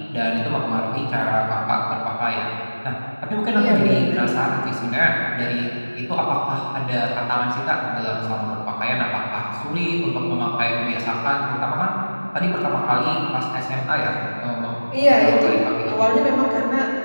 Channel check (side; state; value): both; inverted; correlation -1.00